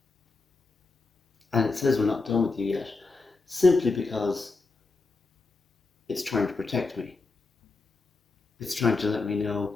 And it says we're not done with you yet simply because it's trying to protect me. It's trying to let me know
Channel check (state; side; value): quieter; right; 3.9 dB